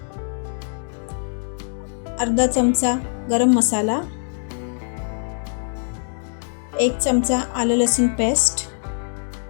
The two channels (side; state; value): right; silent; digital silence